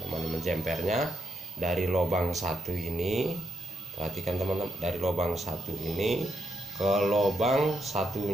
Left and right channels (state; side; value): normal; both; correlation 0.81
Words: menjempernya dari lubang satu ini. Perhatikan teman-teman, dari lubang satu ini ke lubang